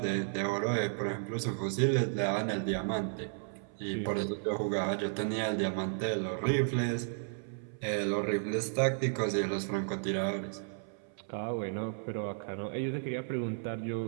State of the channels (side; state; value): left; silent; 55 dB below the other